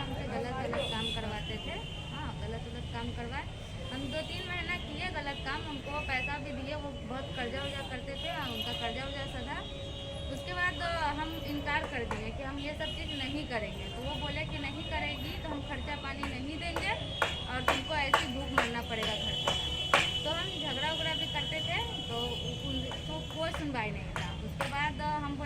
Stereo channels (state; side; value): identical; both; correlation 1.00